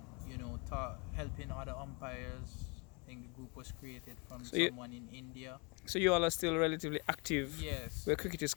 helping other umpires. I think the group was created from So you someone in India. so you all are still relatively active Yes, where cricket is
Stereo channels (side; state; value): right; quieter; 31.1 dB